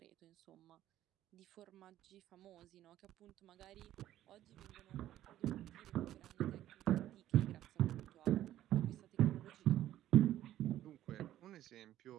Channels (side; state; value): left; quieter; 13.0 dB